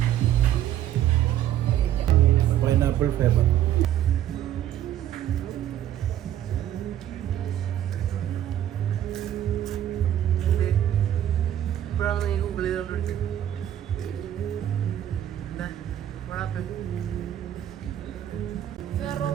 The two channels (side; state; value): left; quieter; 11.5 dB